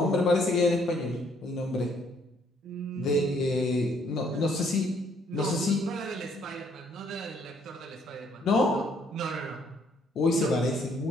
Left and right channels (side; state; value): both; normal; correlation 0.66